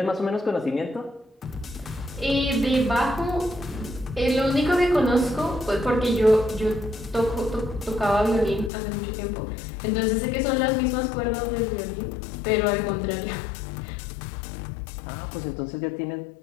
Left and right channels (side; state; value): right; drops out; at 8.7 s